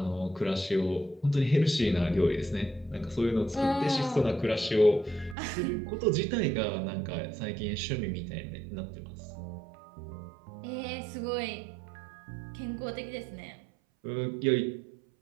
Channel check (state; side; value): drops out; left; at 5.4 s